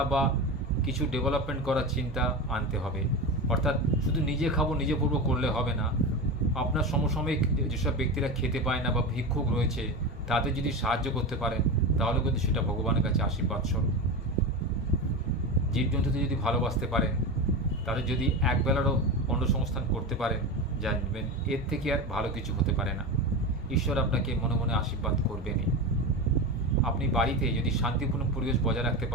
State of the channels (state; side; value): normal; both; correlation 0.22